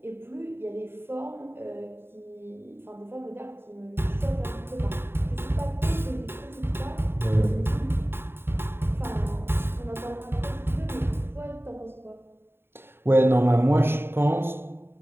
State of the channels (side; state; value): left; late; 0.11 ms